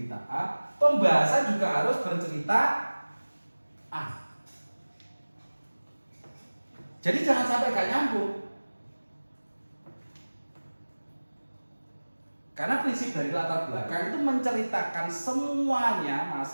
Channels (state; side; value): inverted; both; correlation -1.00